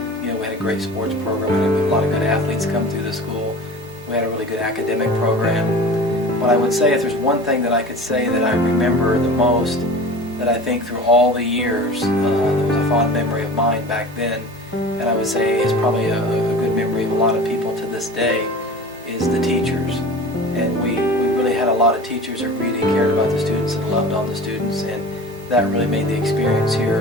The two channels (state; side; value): normal; both; correlation 0.37